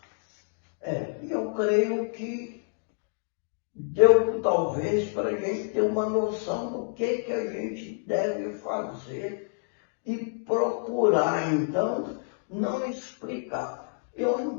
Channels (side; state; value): right; silent; digital silence